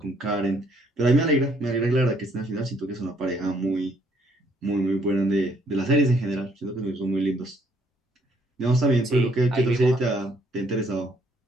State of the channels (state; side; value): normal; both; correlation 0.67